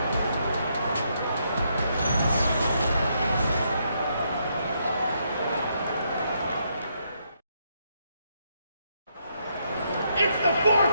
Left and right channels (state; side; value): inverted; both; correlation -0.77